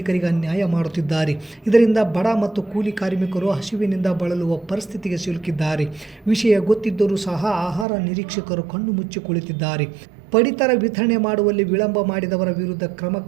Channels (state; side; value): drops out; left; at 7.9 s